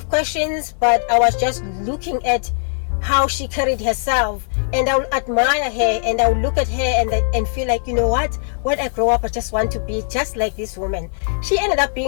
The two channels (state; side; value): silent; right; digital silence